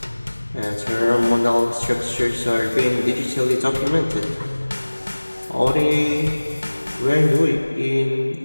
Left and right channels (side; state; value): both; inverted; correlation -1.00